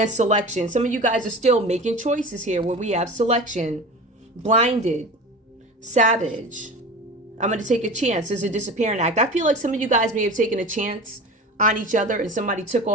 selection. Some of you guys are still making choices here where we have selection. Blinded. Savage. I'm going to take a chance. There's a disappearing act. I feel like some of you guys may have taken a chance on each other and somebody took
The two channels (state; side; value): normal; both; correlation 0.33